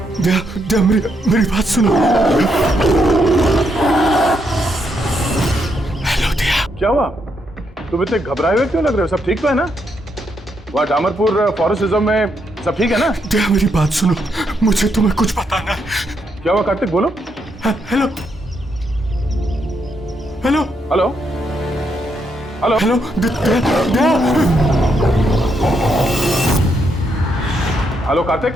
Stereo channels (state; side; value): normal; both; correlation 0.78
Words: दया दया, मेरी बात सुनो। हेलो दया। क्या हुआ? तुम इतने घबराए हुए क्यों लग रहे हो? सब ठीक तो है ना? वहाँ डामरपुर फॉरेस्ट रिजर्व में सब ठीक है ना? दया, मेरी बात सुनो, मुझे तुम्हें कुछ बताना है। क्या हुआ कार्तिक, बोलो। Hello hello hello hello hello Daya. Hello